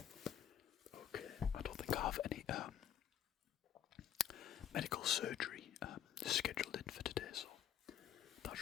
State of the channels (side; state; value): right; quieter; 10.2 dB